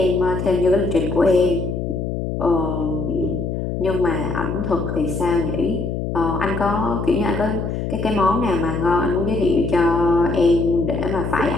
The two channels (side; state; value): left; noise; hum, 3 dB below the sound